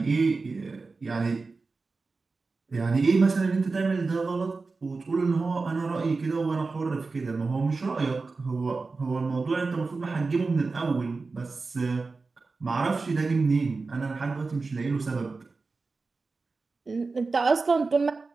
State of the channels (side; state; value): left; quieter; 4.0 dB